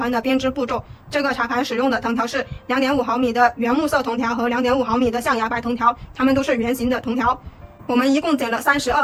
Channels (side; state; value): both; identical; correlation 1.00